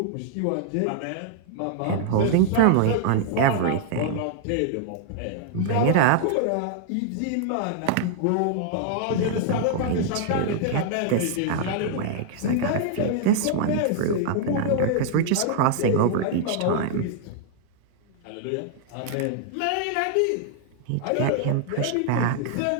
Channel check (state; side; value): different; both; correlation 0.00